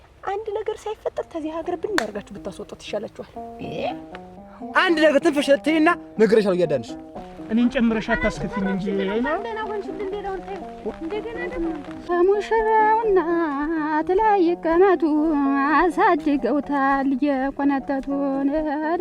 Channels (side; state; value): both; identical; correlation 1.00